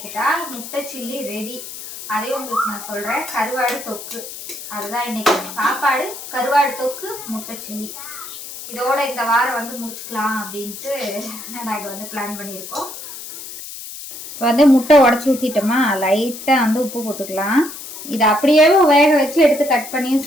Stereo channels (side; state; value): left; noise; hiss, 11 dB below the sound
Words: முட்டை சில்லி ரெடி. அதையும் உங்களுக்கு நான் சொல்கிறேன். கருவாடு தொக்கு அதுதான் இன்றைக்கி சாப்பாடு. கருவாடு தொக்கு முட்டை சில்லி இதோட இந்த வாரம் வந்து முடிச்சுக்கலாம் அப்படின்ட்டு நாங்கள் வந்து பிளான் பண்ணியிருக்கோம். இப்போ வந்து முட்டை உடச்சி ஊற்றிட்டோமா, லைட்டாக வந்து உப்பு போட்டுக்கலாம். இதை அப்படியே வேக வச்சு எடுத்து கட் பண்ணியும்